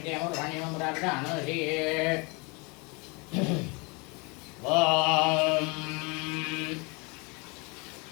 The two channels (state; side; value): quieter; right; 29.7 dB